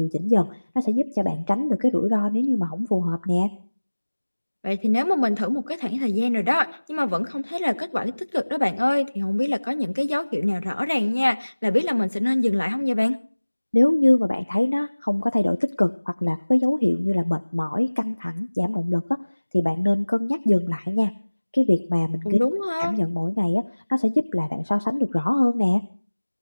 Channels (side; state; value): both; inverted; correlation -1.00